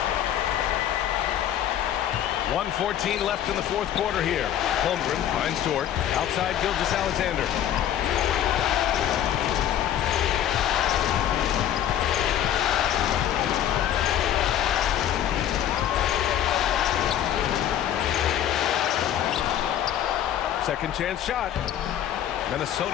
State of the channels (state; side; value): quieter; right; 10.7 dB